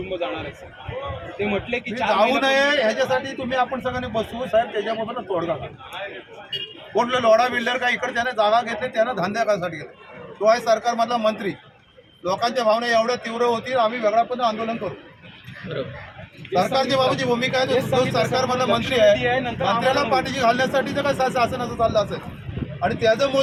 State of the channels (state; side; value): identical; both; correlation 1.00